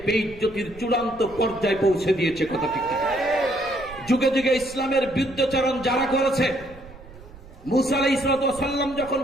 বেইজ্জতির চূড়ান্ত পর্যায়ে পৌঁছে দিয়েছে, কথা ঠিক কিনা? যুগে যুগে ইসলামের বিরুদ্ধাচরণ যারা করেছে, মুসা আলাইহিস সালাম যখন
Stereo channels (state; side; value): noise; right; rumble, 19 dB below the sound